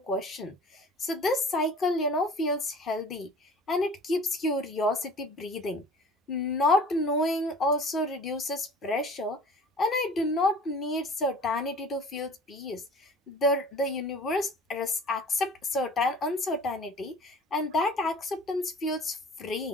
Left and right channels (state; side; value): normal; both; correlation 0.44